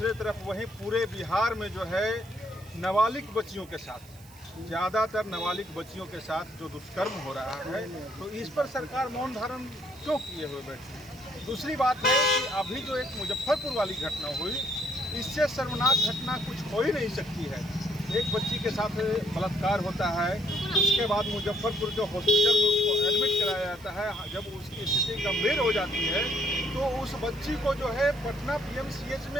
तरफ वहीं पूरे बिहार में जो है नाबालिग बच्चियों के साथ, ज़्यादातर नाबालिग बच्चियों के साथ जो दुष्कर्म हो रहा है, तो इस पर सरकार मौन धारण क्यों किए हुए बैठी? दूसरी बात है कि अभी जो एक मुजफ्फरपुर वाली घटना हुई, इससे शर्मनाक घटना कुछ हो ही नहीं सकती है। एक बच्ची के साथ बलात्कार होता है, उसके बाद मुजफ्फरपुर के हॉस्पिटल में उसको एडमिट कराया जाता है। जब उसकी स्थिति गंभीर हो जाती है तो उस बच्ची को जो है पटना PMCH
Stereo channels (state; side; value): noise; right; hiss, 24 dB below the sound